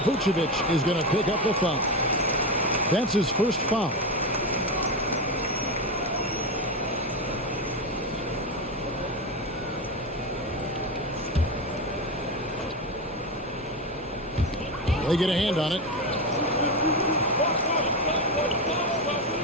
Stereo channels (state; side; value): normal; both; correlation 0.16